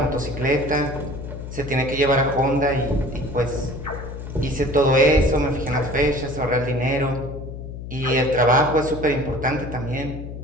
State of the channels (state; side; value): noise; left; hum, 9 dB below the sound